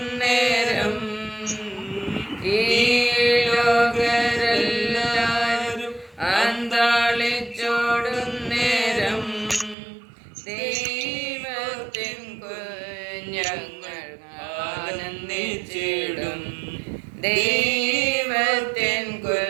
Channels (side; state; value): left; drops out; at 9.8 s